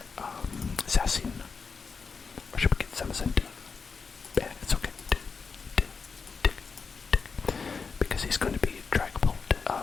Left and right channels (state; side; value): quieter; right; 5.1 dB